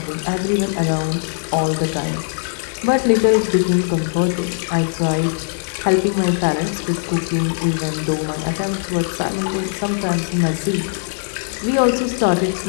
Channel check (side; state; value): right; silent; digital silence